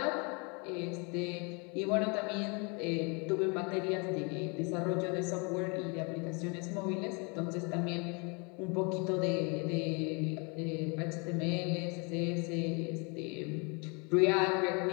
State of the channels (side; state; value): right; quieter; 32.5 dB